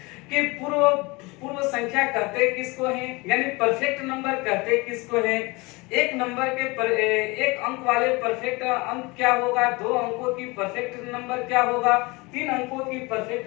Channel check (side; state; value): right; quieter; 25.0 dB